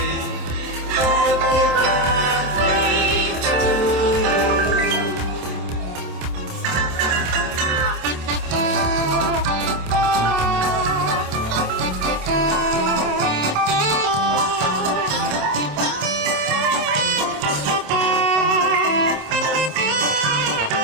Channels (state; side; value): late; left; 27 ms